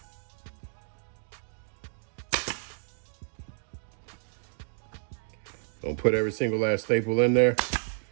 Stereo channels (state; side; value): silent; left; digital silence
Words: Don't put every single last staple in there.